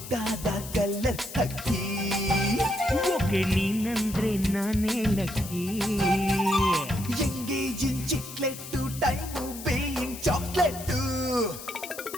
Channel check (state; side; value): noise; left; hiss, 12 dB below the sound